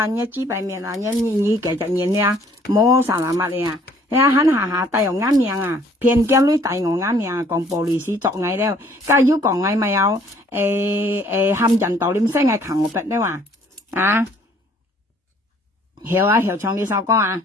知白面你繼續演冇實物嚟肯下帶有啱命偏見女帶我啱命講玻璃師作藝了家要講藝咪有冚人道念聲係強我筆咧話曉唱呢首歌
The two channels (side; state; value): both; normal; correlation 0.60